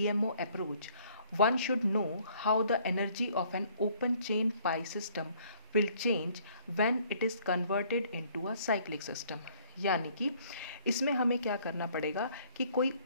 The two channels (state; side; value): inverted; both; correlation -0.61